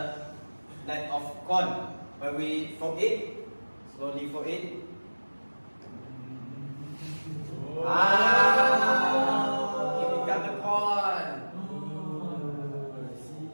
net of corn. When we fold it, slowly fold it. It becomes the corn.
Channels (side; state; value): both; inverted; correlation -1.00